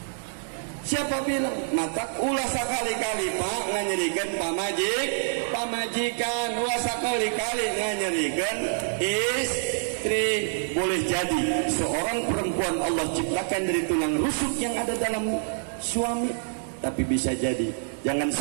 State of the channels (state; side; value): silent; left; digital silence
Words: Siapa bilang mata ulah sakali-kali Pak nganyerikeun pamajikan ulah sakali-kali nganyerikeun istri. Boleh jadi seorang perempuan Allah ciptakan dari tulang rusuk yang ada dalam suami, tapi bisa jadi jangan